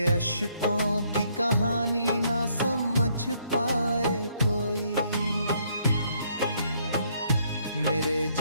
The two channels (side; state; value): both; inverted; correlation -0.69